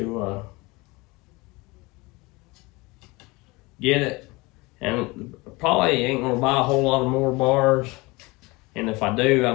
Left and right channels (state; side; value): quieter; right; 24.0 dB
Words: get it, and probably ain't gonna buy a whole lot of more bars, and if I do, I